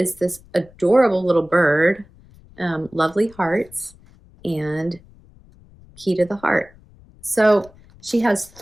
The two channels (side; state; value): left; noise; rumble, 26 dB below the sound